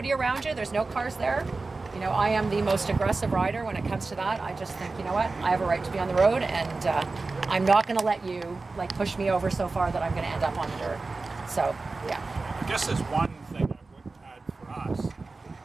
around you, there's no cars there. You know, I am the most aggressive rider when it comes to that. I just think, you know what, I have a right to be on the road, and I'm not going to let you like push me over so far that I'm going to end up on the dirt. So, yeah. I guess there's one thing I would add for us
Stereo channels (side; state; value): left; quieter; 3.7 dB